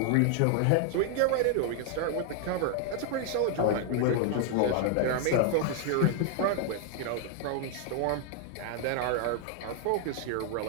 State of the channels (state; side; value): different; both; correlation 0.00